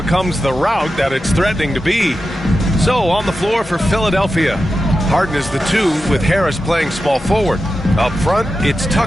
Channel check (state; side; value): normal; both; correlation 0.91